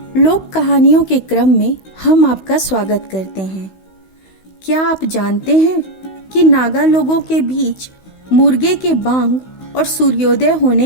लोक कहानियों के क्रम में हम आपका स्वागत करते हैं। क्या आप जानते हैं कि नागा लोगों के बीच मुर्गे के बांग और सूर्योदय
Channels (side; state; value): right; late; 16 ms